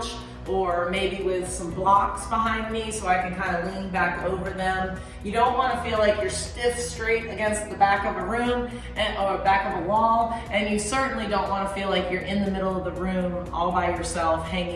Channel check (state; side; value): identical; both; correlation 1.00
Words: or maybe with some blocks behind me so I can kind of lean back over them. You don't want to feel like you're stiff straight against the back of a room or back of a wall, and you certainly don't want to feel like you're in the middle of the room all by yourself,